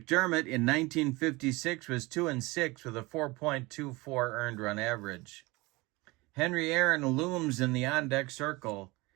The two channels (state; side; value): quieter; left; 22.9 dB